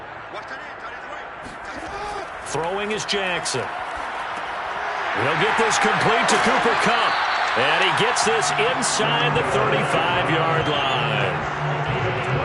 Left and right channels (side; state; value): both; identical; correlation 1.00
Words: Throwing is Jackson. He'll get this complete to Cooper Kupp. And he gets this inside the 35-yard line.